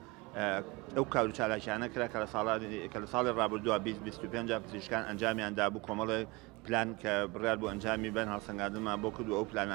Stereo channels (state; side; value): quieter; left; 24.4 dB